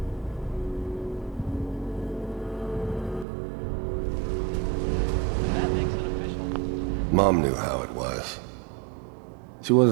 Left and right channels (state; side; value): drops out; left; at 3.2 s